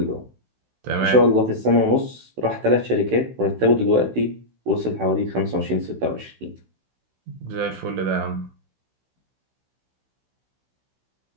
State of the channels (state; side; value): late; left; 16 ms